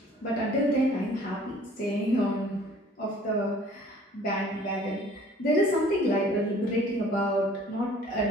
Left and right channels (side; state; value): both; normal; correlation 0.53